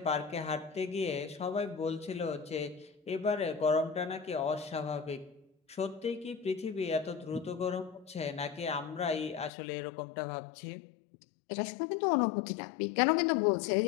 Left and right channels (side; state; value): right; drops out; at 9.5 s